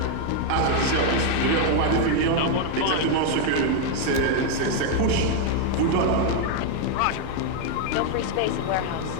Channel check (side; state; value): both; different; correlation 0.00